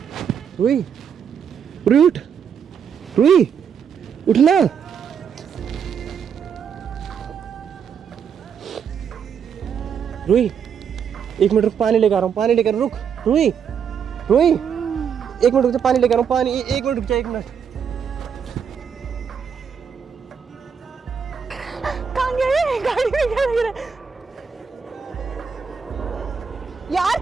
रुई, रुई उठ, रुई उठना। रुई एक मिनट रुक, पानी लेकर आ रहा हूँ, पानी लेकर रुक। रुई, रुई एक मिनट रुक जा, पानी लेकर आ रहा हूँ, पानी। एक मिनट रुक जा, एक मिनट। कहाँ गए? गाड़ी में क्या लग रहा है? यार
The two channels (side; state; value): left; quieter; 7.2 dB